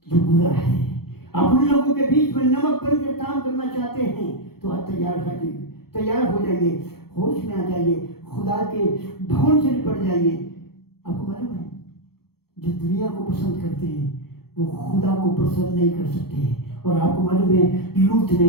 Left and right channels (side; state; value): right; late; 0.95 ms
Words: जो बुरा है? आप उन लोगों के बीच में नमक बनकर काम करना चाहते हैं तो आप तैयार हो जाइए, होश में आ जाइए, खुदा के भवन से निपट जाइए। आपको मालूम है, जो दुनिया को पसंद करते हैं वो खुदा को पसंद नहीं कर सकते हैं। और आपको मालूम है, लूत ने